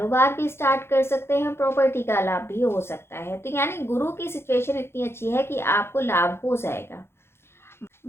भी स्टार्ट कर सकते हैं, प्रॉपर्टी का लाभ भी हो सकता है। तो यानी गुरु की सिचुएशन इतनी अच्छी है कि आपको लाभ हो जाएगा।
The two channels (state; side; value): late; right; 0.12 ms